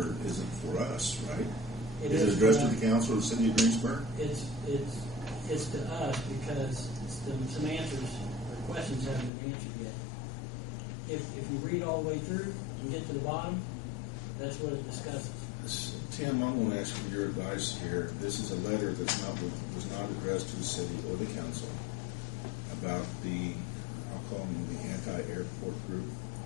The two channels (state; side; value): drops out; right; at 9.3 s